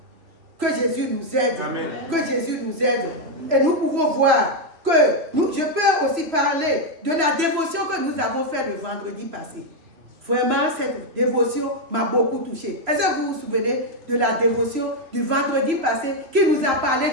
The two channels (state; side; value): late; left; 3.0 ms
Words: Que Jésus nous aide. Amen. Que Jésus nous aide. Et nous pouvons voir que je peux aussi parler de la dévotion que nous avons faite le vendredi passé. Vraiment, cette dévotion m'a beaucoup touché. Est-ce que vous vous souvenez de la dévotion du vendredi passé qui nous a parlé